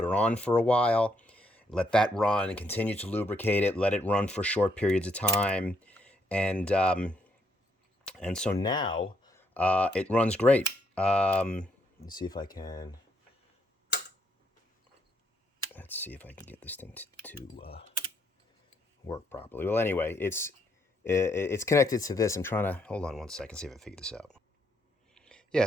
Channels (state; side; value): normal; both; correlation 0.73